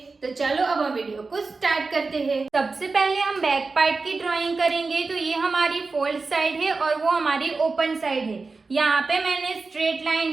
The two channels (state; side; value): quieter; left; 4.0 dB